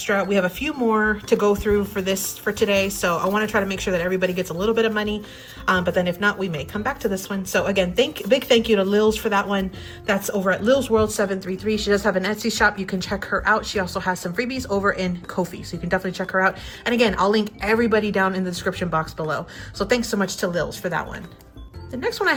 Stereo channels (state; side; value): identical; both; correlation 1.00